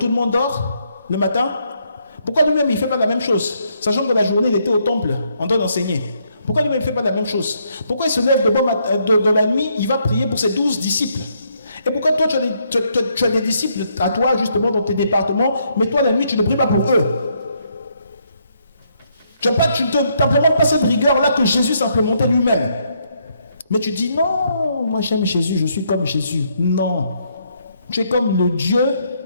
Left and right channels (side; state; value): both; inverted; correlation -0.73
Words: le monde dort le matin? Pourquoi lui-même il ne fait pas la même chose? Sachant que la journée il était au temple en train d'enseigner. Pourquoi lui-même il ne fait pas la même chose? Pourquoi il se lève de bon matin, de la nuit, il va prier pour ses 12 disciples? Et pourquoi toi tu as des disciples à toi justement dans tes départements, mais toi la nuit tu ne pries pas pour eux? Tu n'implémentes pas cette rigueur-là que Jésus s'implémentait lui-même. Mais tu dis non, moi j'aime Jésus, je suis comme Jésus. Non. Tu es comme le Dieu